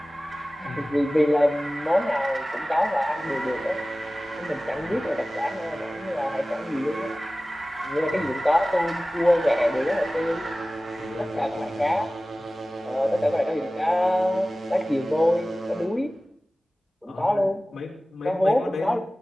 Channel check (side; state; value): both; normal; correlation 0.97